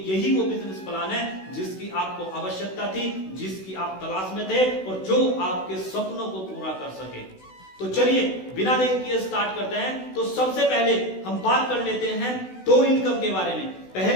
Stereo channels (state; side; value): late; right; 16 ms